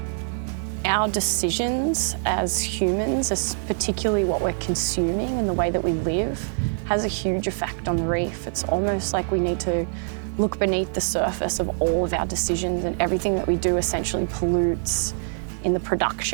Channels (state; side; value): silent; left; 62 dB below the other